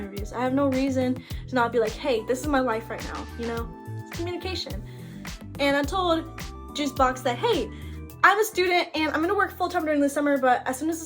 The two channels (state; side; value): identical; both; correlation 1.00